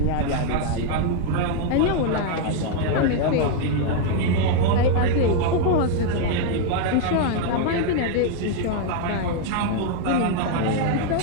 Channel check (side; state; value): both; different; correlation 0.00